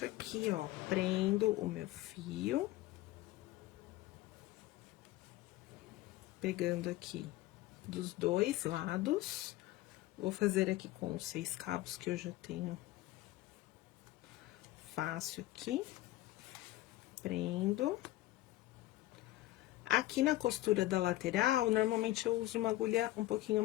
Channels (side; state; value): right; quieter; 16.9 dB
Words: aqui, ó, prendo o meu fio. Pegando aqui dos dois lados. Vou fazer aqui com os 6 cabos que eu já tenho fácil aqui. Prendo. Aqui na costura da lateral, normalmente eu uso uma agulha um pouquinho